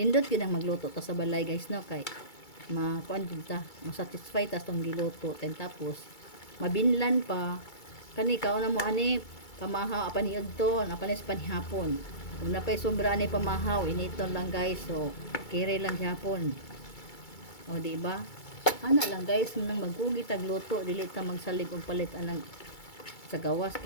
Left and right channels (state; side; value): late; right; 2.3 ms